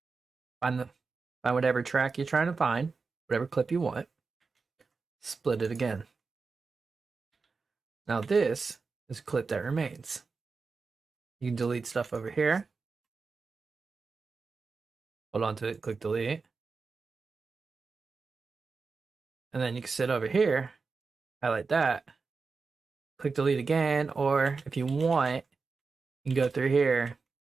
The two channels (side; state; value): left; quieter; 4.6 dB